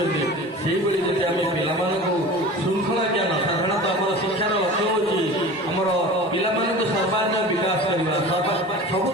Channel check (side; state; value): both; normal; correlation 0.37